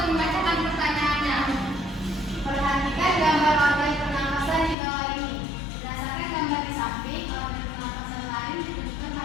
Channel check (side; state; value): right; drops out; at 4.8 s